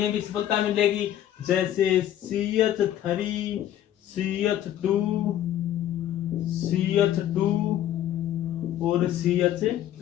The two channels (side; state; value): right; quieter; 11.8 dB